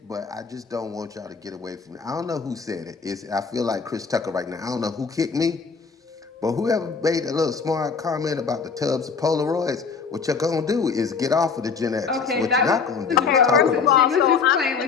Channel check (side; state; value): right; quieter; 5.5 dB